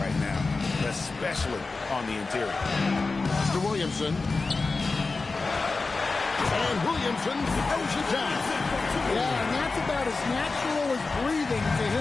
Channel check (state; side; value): quieter; right; 3.9 dB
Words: now, especially on the interior. Pass to Williamson. And Williamson throws it down. Yeah, and that's about as natural as breathing to